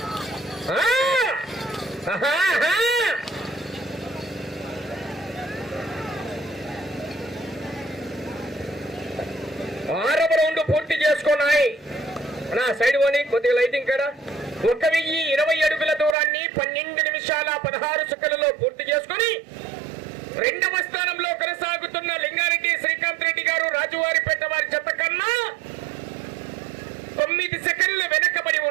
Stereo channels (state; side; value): drops out; left; at 16.2 s